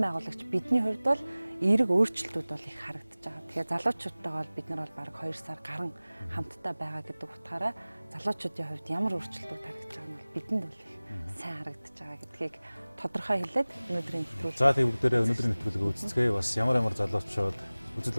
байгуулагч бидний хувьд бол эерэг өөрчлөлтүүд бол их харагдаж байгаа. Тэгэхээр залуучуудтайгаа бол бид нар бол бараг 2 сар гарan хамтдаа байгаа гэдэг утгаараа залуучуудын хувьд ямар өөрчлөлтүүд харагдаж байгаа нь бол бидэнд бол их сайн харагдаж байгаа гэдгийг тодорхой хэлээд өнөөдрийн нэвтрүүлэг. За тийм бүгдээрээ өнөөдрийн нэвтрүүлгийг үзцгээе. Бас ямар залуучууд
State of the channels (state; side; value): inverted; both; correlation -0.99